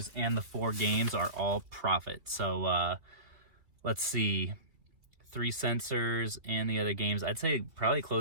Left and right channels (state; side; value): late; left; 2.9 ms